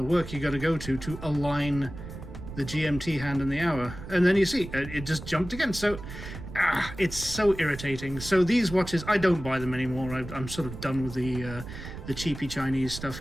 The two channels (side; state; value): right; noise; rumble, 11 dB below the sound